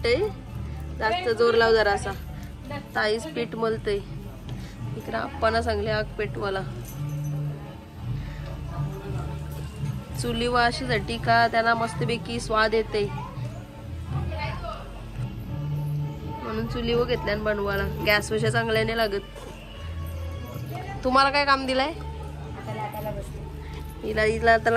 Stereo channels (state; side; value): identical; both; correlation 1.00